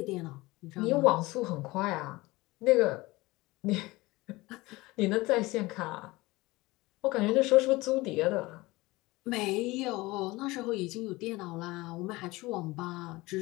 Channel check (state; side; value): quieter; right; 21.0 dB